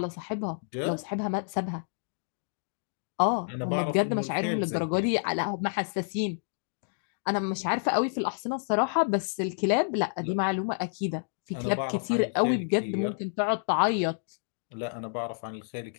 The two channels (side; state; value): right; silent; digital silence